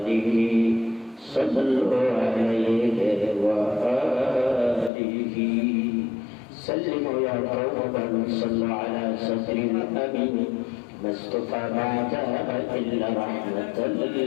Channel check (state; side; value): drops out; right; at 4.9 s